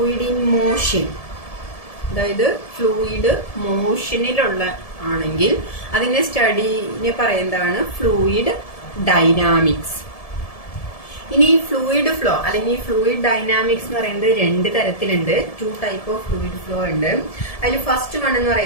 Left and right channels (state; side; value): late; right; 1.7 ms